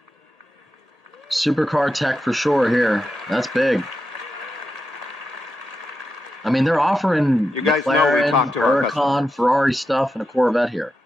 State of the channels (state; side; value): normal; both; correlation 0.88